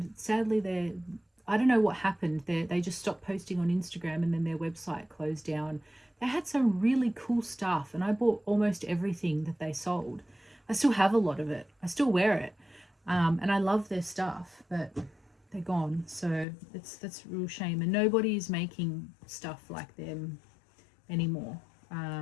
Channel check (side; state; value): right; drops out; at 16.4 s